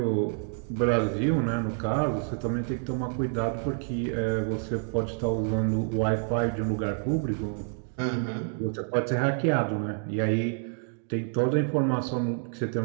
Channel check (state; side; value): silent; left; 59 dB below the other